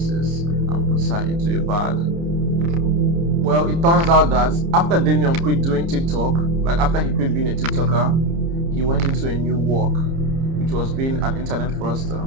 and puts her into a bag. Well, it turns out that after Damien quit doing TikTok, like after he quit being a TikToker, he went into a new work, which was being an internet fraudster.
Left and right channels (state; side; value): late; left; 30 ms